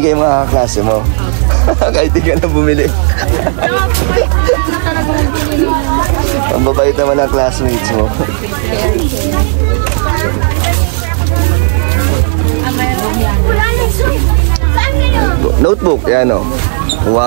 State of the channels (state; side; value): silent; left; 55 dB below the other